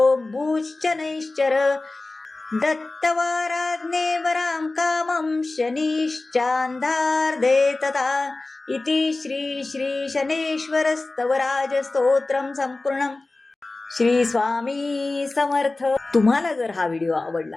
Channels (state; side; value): quieter; right; 3.2 dB